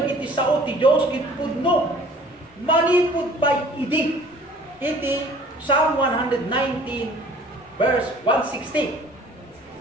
sao ti Dios ket pudno. Manipud pa idi. Iti Psalm 119 verse 160.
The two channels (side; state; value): both; normal; correlation 0.51